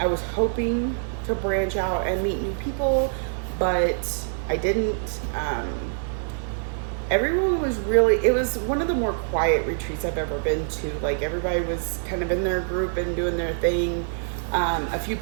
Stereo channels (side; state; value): left; silent; digital silence